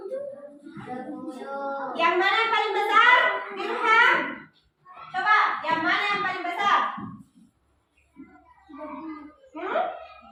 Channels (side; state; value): both; identical; correlation 1.00